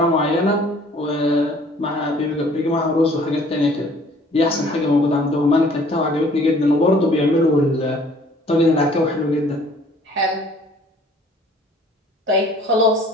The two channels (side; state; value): both; normal; correlation 0.55